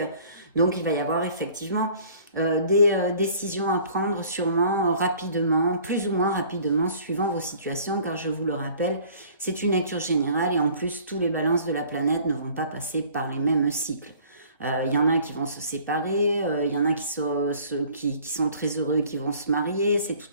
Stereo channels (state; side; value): inverted; both; correlation -0.52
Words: Donc, il va y avoir effectivement des décisions à prendre sûrement rapidement, plus ou moins rapidement, suivant vos situations, car je vous le rappelle, c'est une lecture générale et en plus, tous les balances de la planète ne vont pas passer par les mêmes cycles. Il y en a qui vont se séparer, il y en a qui sont très heureux, qui vont se marier, c'est